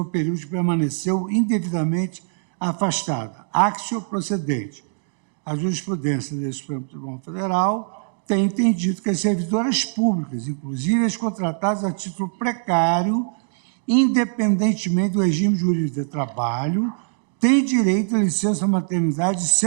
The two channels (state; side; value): silent; left; digital silence